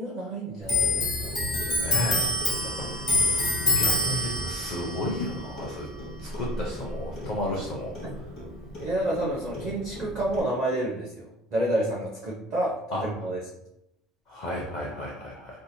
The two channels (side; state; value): both; normal; correlation 0.39